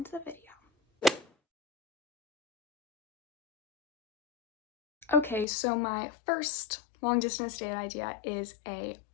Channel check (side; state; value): right; drops out; at 5.5 s